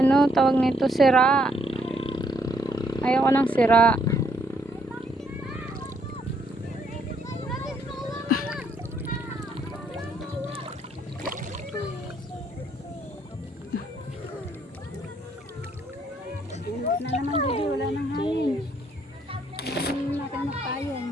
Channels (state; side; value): normal; both; correlation 0.71